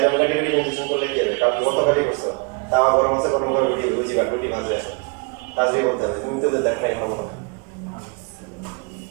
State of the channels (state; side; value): quieter; left; 33.3 dB